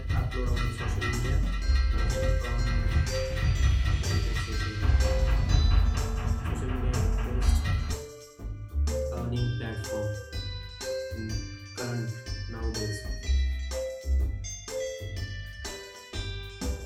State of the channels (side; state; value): both; identical; correlation 1.00